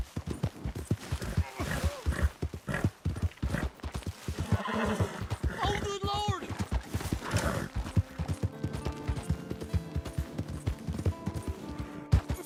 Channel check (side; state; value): both; identical; correlation 1.00